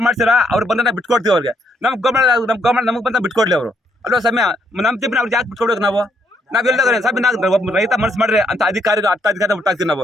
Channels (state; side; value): normal; both; correlation 0.73